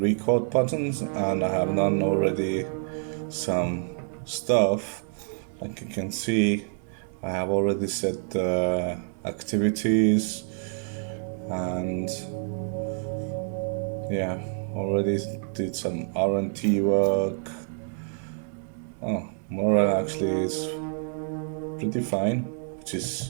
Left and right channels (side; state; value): left; silent; 60 dB below the other